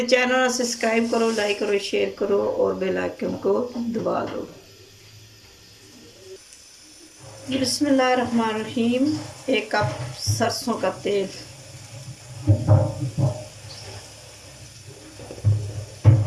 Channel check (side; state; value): both; identical; correlation 1.00